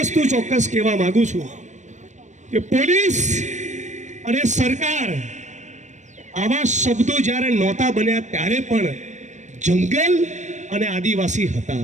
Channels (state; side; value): late; left; 0.35 ms